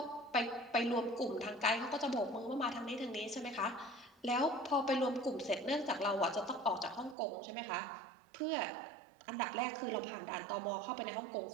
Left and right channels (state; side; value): drops out; left; at 7.2 s